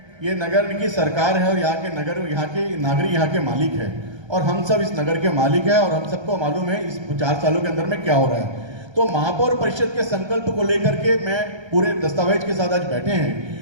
ये नगर की सरकार है और यहाँ के नागरिक यहाँ के मालिक है और हम सब इस नगर के मालिक है और हम सबको मालूम है इस 4 सालों के अंदर में क्या हो रहा है। तो महापौर परिषद के संकल्प को लेकर के मैं पूरे दस्तावेज के साथ आज बैठे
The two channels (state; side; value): late; left; 1.3 ms